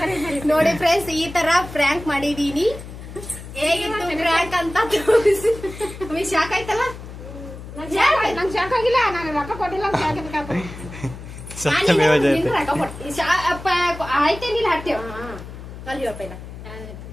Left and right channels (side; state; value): left; noise; hum, 13 dB below the sound